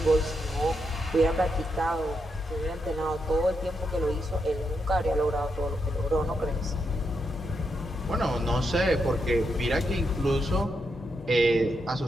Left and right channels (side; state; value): both; normal; correlation 0.83